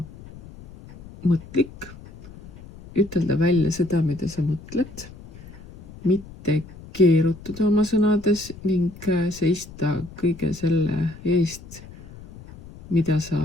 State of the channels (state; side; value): noise; left; rumble, 18 dB below the sound